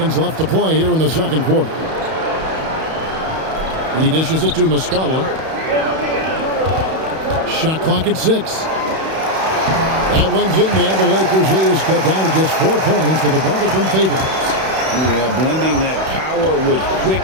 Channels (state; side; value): late; left; 31 ms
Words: left to play here in the second quarter. He dishes it to Muscala. Shot clock at 6. That one's in there. The Lakers lead is cut down to just 4 points with a bucket from Favors. Yeah, blending that power with